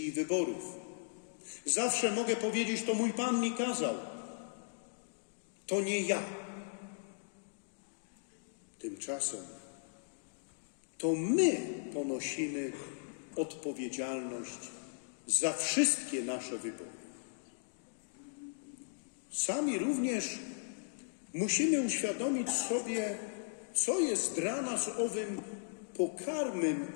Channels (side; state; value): right; silent; digital silence